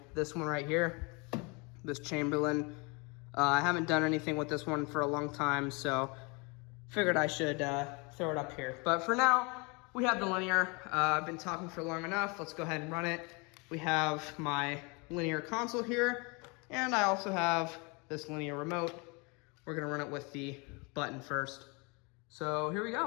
this one right here, this Chamberlain. I haven't done anything with this one for a long time, so figured I should throw it up here. But for now, we have the linear. I've been talking for long enough. Let's go ahead and run it. We have my linear console here, and I also have this linear remote. We're gonna run it with the button first. So here we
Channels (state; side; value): quieter; right; 29.8 dB